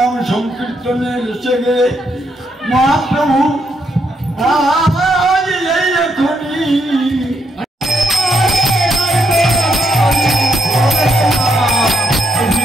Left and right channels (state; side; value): normal; both; correlation 0.77